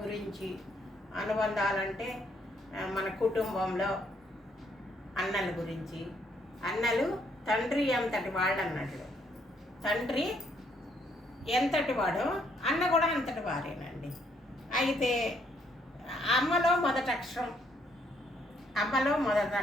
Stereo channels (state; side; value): normal; both; correlation 0.70